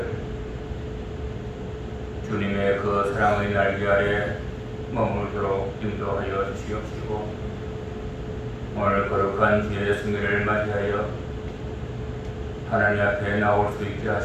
주님의 그 사랑의 날개 아래 머물도록 인도하여 주시옵시고 오늘 거룩한 주의 승리를 맞이하여 하나님 앞에 나올 수 있게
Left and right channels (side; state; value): both; identical; correlation 1.00